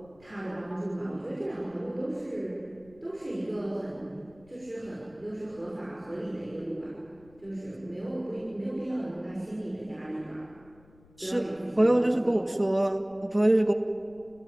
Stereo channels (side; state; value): left; noise; rumble, 26 dB below the sound